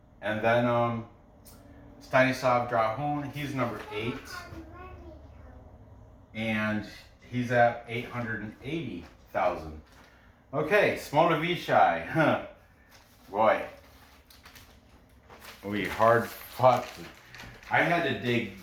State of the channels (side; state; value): both; identical; correlation 1.00